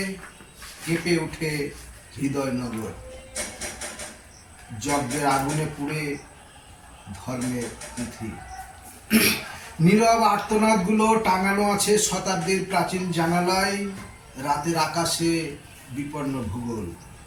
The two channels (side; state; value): both; identical; correlation 1.00